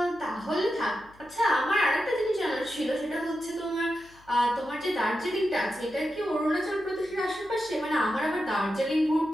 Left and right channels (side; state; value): left; noise; hum, 27 dB below the sound